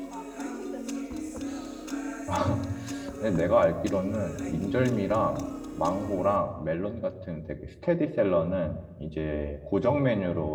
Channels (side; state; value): both; identical; correlation 1.00